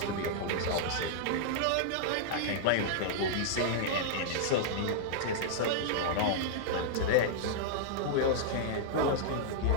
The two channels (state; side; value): different; both; correlation -0.02